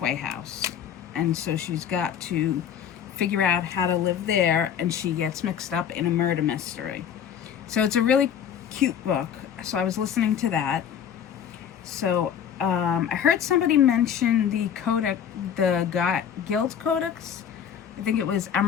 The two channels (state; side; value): quieter; right; 8.6 dB